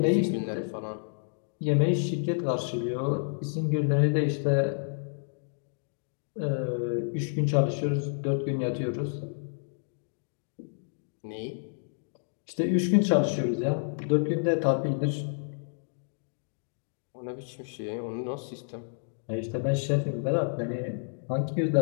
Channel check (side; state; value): right; silent; digital silence